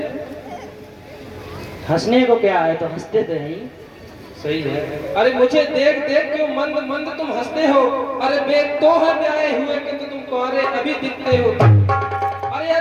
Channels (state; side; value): identical; both; correlation 1.00